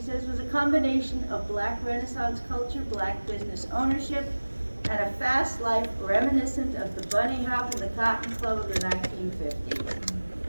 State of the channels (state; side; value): inverted; both; correlation -1.00